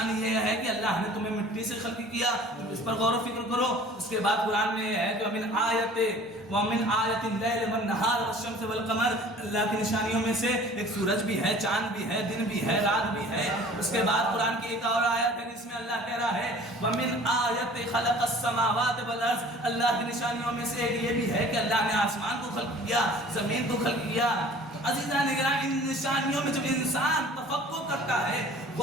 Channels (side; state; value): both; normal; correlation 0.47